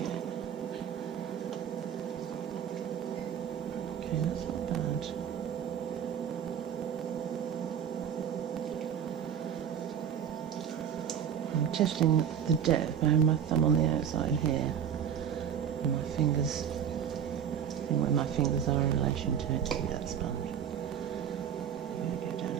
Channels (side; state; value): left; quieter; 8.7 dB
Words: Okay, that's not bad. I'm testing the depth. I have my thumb on the outside here. My fingers, where my fingers are in relation to it, to be that sponge. I'm going to go down a